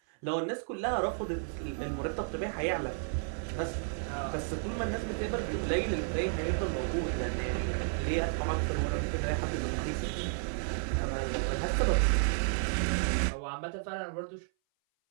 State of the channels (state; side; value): silent; left; 56 dB below the other